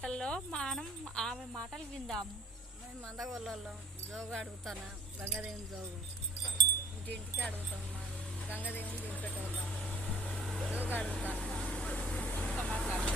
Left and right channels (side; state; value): both; normal; correlation 0.50